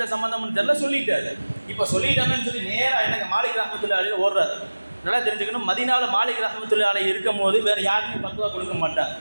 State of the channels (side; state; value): both; inverted; correlation -1.00